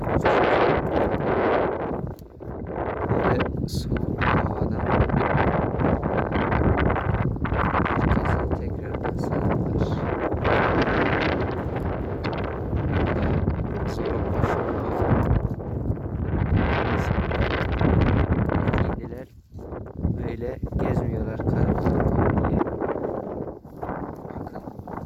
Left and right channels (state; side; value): identical; both; correlation 1.00